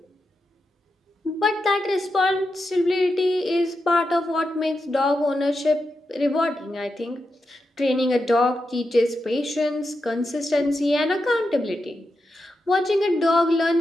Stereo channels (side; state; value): both; normal; correlation 0.87